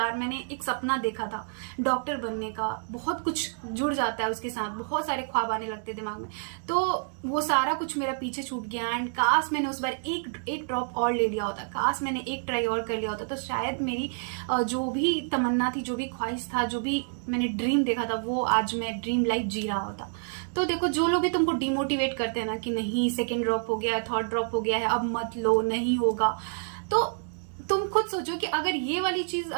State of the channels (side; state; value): left; silent; 59 dB below the other